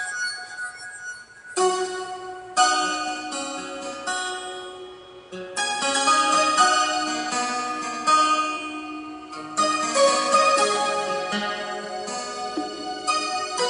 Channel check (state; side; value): identical; both; correlation 1.00